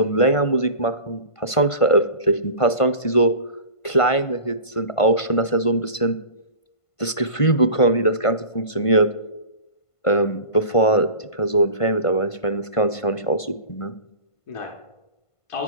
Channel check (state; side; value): late; right; 1.5 ms